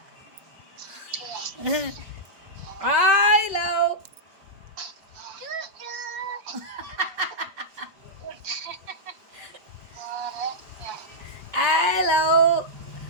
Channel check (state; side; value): late; left; 5.4 ms